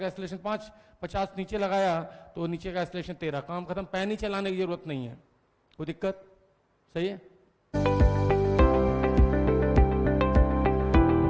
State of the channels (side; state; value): both; identical; correlation 1.00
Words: एक्सेलरेशन 5, 50 नीचे लगाया तो नीचे का एक्सेलरेशन 13, काम खत्म। पैन ही चलाने की जरूरत नहीं है, कोई दिक्कत? सही है।